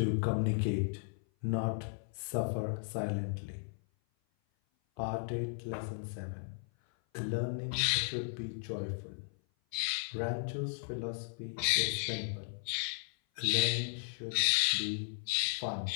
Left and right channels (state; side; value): silent; right; 54 dB below the other